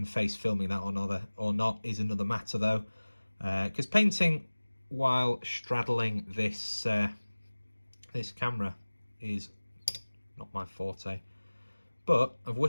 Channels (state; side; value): inverted; both; correlation -1.00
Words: face filming that or not is another matter, though, because painting while straddling this this camera is not my forte. But I've